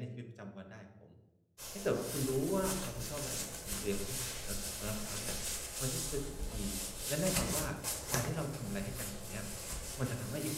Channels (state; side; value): identical; both; correlation 1.00